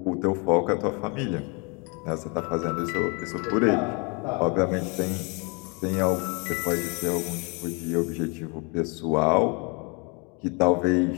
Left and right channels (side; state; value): right; quieter; 32.1 dB